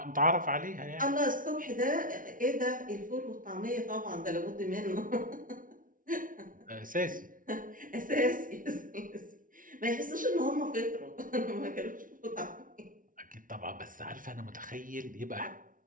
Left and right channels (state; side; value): late; left; 0.39 ms